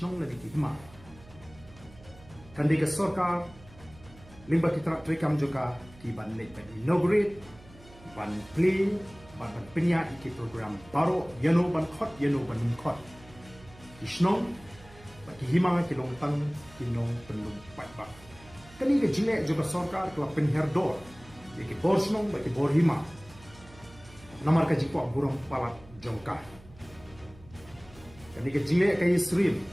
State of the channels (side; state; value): right; noise; hum, 22 dB below the sound